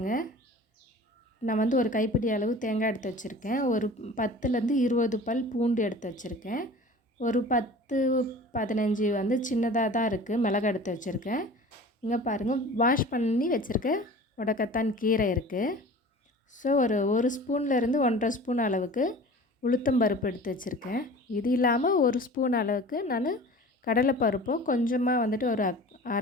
நான் வந்து ஒரு கைப்பிடி அளவு தேங்காய் எடுத்து வச்சுருக்கேன். ஒரு 10லேருந்து 20 பல் பூண்டு எடுத்து வச்சுருக்கேன். ஒரு 10, 15 வந்து சின்னதாக தான் இருக்குது மிளகாய் எடுத்து வச்சுருக்கேன். இங்கே பாருங்கள், வாஷ் பண்ணி வச்சுருக்க முடக்கத்தான் கீரை இருக்குது. ஸோ ஒரு ஸ்பூன்லேருந்து 1½ ஸ்பூன் அளவுக்கு உளுத்தம்பருப்பு எடுத்து வச்சுருக்கேன். இது இல்லாமல் 1 ஸ்பூன் அளவுக்கு நான் கடலைப்பருப்பும் கொஞ்சமாக வந்துட்டு ஒரு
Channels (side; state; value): both; normal; correlation 0.41